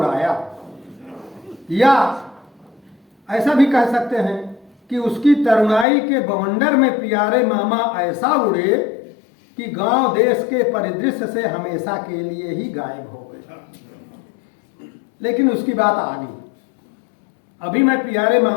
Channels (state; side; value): drops out; right; at 5.9 s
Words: या ऐसा भी कह सकते हैं कि उसकी तरुणाई के बवंडर में प्यारे मामा ऐसा उड़े कि गांव देश के परिदृश्य से हमेशा के लिए ही गायब हो गए। लेकिन उसकी बात आगे। अभी मैं प्यारे